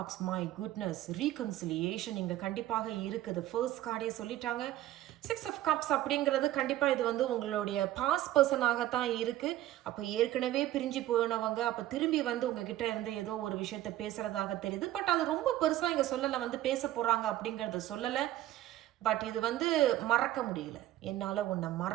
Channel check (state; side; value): quieter; left; 14.1 dB